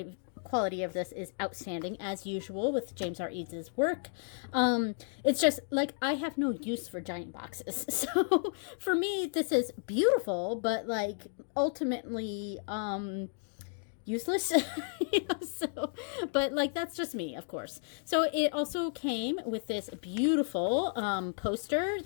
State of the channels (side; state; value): right; silent; digital silence